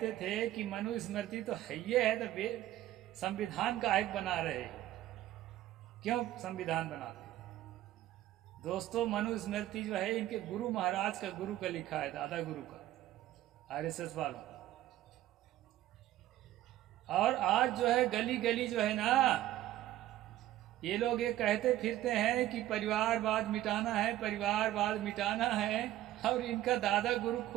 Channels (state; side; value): quieter; left; 14.1 dB